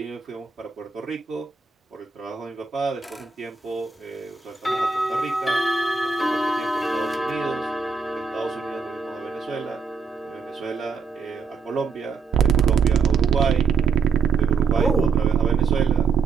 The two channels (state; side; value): quieter; left; 5.3 dB